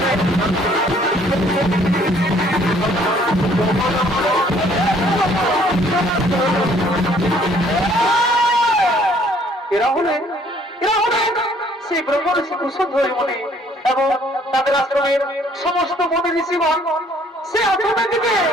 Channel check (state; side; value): normal; both; correlation 0.61